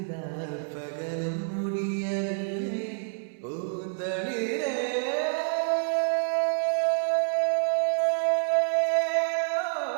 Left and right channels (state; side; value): silent; left; 59 dB below the other